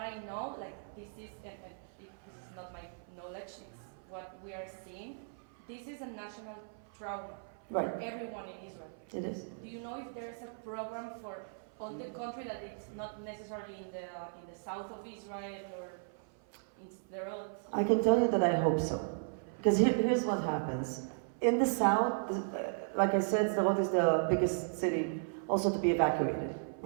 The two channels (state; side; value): silent; left; 54 dB below the other